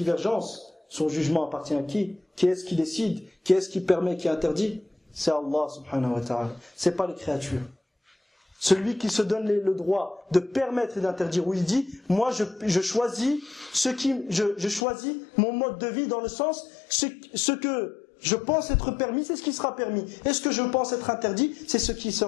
son jugement appartient à qui? Qui est-ce qui décide? Qui est-ce qui permet, qui interdit? C'est Allah subhanahu wa ta'ala. C'est pas les créatures. Celui qui se donne le droit de permettre et d'interdire, où il dit, moi je choisis je choisis mon mode de vie dans le sens, ce que je pense être permis, c'est ce qui sera permis. Et ce que je pense être interdit, c'est ce qui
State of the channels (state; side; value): drops out; right; at 14.9 s